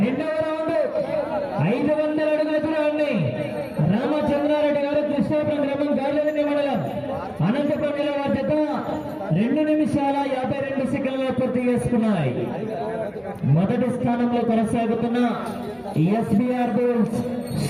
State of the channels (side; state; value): both; identical; correlation 1.00